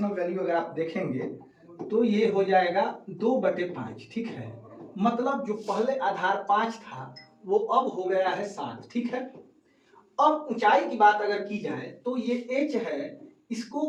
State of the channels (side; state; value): both; identical; correlation 1.00